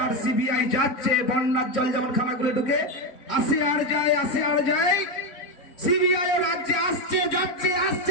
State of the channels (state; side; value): late; right; 4.0 ms